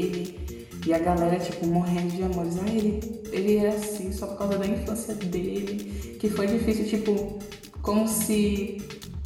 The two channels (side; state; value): both; identical; correlation 1.00